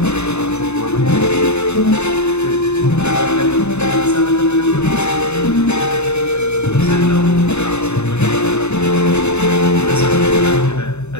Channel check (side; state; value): right; late; 0.81 ms